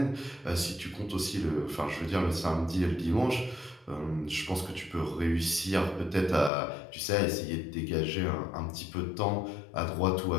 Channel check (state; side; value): drops out; right; at 6.5 s